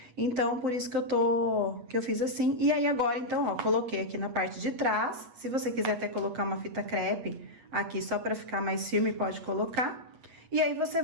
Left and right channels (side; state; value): left; late; 8.3 ms